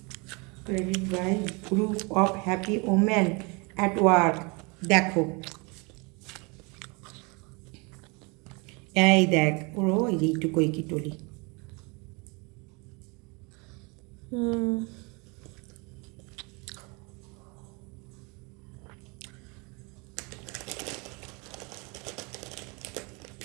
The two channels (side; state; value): left; quieter; 29.4 dB